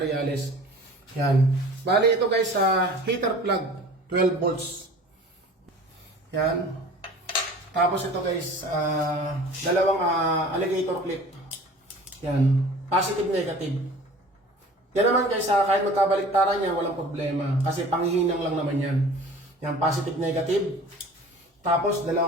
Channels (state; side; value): normal; both; correlation 0.44